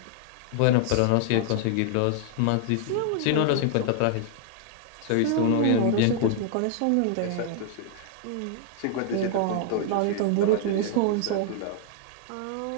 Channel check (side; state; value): both; different; correlation 0.00